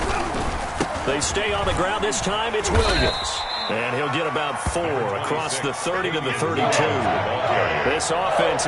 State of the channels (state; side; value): identical; both; correlation 1.00